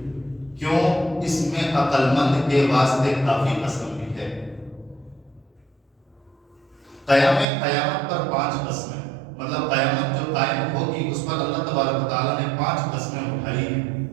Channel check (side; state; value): left; drops out; at 7.5 s